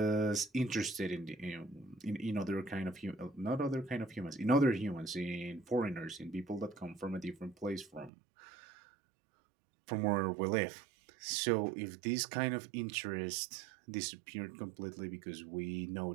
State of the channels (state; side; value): drops out; left; at 8.1 s